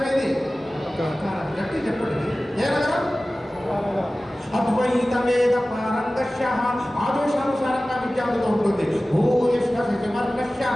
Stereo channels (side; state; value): both; normal; correlation 0.97